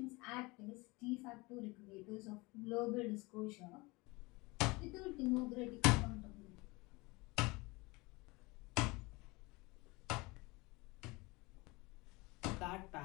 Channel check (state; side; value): quieter; right; 24.3 dB